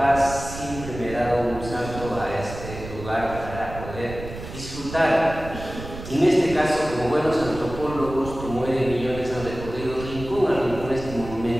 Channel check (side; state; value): right; noise; rumble, 11 dB below the sound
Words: siempre me he dado un salto a este lugar para poder disfrutar. En este caso, como buenos antropólogos, Tomueda y Millones han recorrido rincón a rincón este